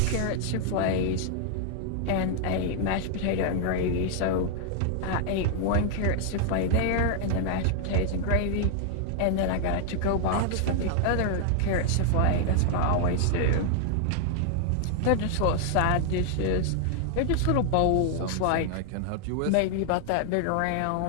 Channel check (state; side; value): different; both; correlation 0.00